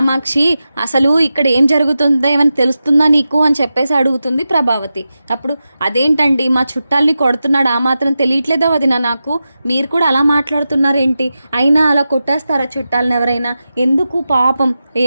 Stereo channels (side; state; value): both; inverted; correlation -0.92